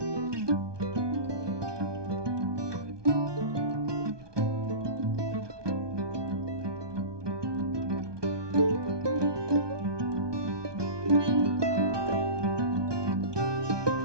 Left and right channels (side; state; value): left; late; 1.2 ms